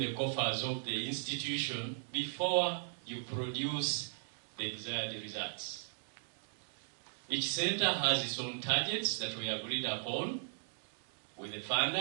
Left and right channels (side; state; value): left; silent; digital silence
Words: coffers of the institution before you produce the desired results. Each center has its own targets that we agreed upon with the